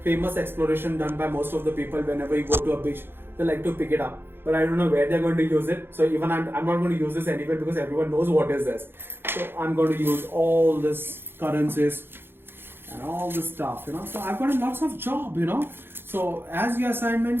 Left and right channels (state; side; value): late; left; 0.10 ms